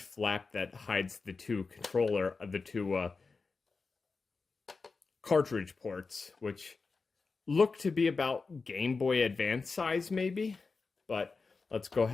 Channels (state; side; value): quieter; right; 4.3 dB